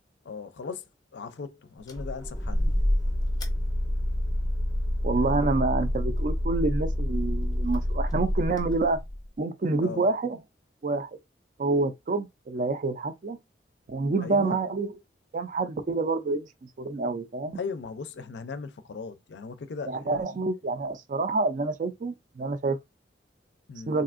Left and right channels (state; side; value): normal; both; correlation 0.46